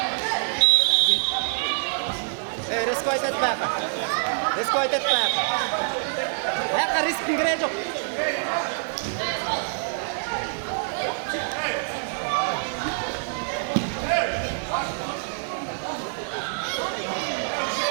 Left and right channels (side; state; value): left; silent; digital silence